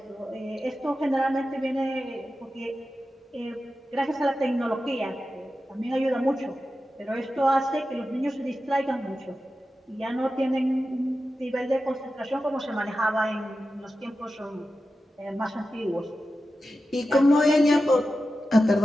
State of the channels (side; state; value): both; normal; correlation 0.92